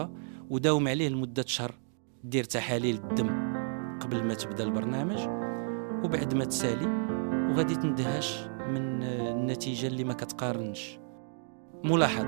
وداوم عليه لمدة شهر. دير تحاليل الدم قبل ما تبدأ البرنامج وبعد ما تسالي، وغادي تندهش من النتيجة اللي ما كتقارنش.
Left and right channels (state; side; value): silent; left; digital silence